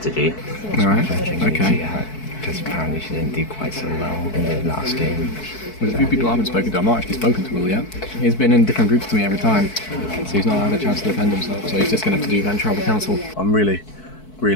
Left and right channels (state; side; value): late; right; 4.6 ms